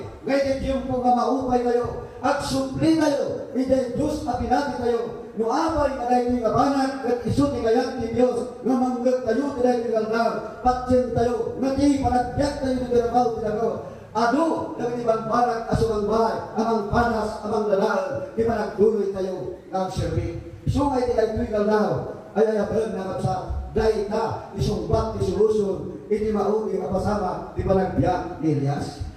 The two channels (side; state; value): both; identical; correlation 1.00